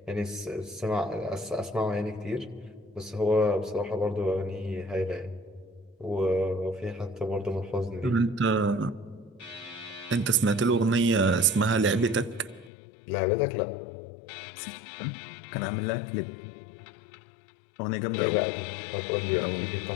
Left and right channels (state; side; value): drops out; right; at 12.7 s